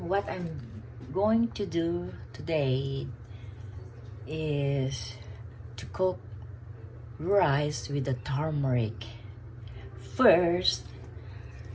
What I'm going to do today is to cook rice with the turmeric. First,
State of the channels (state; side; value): identical; both; correlation 1.00